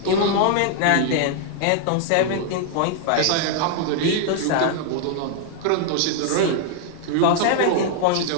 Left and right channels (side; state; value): both; different; correlation 0.00